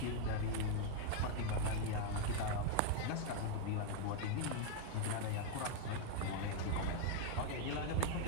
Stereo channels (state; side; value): different; both; correlation 0.00